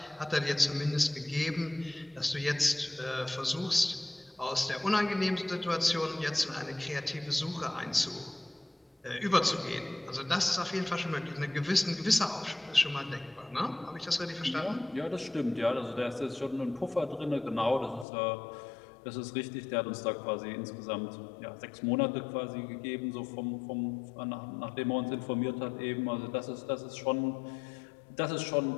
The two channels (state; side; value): drops out; right; at 18.1 s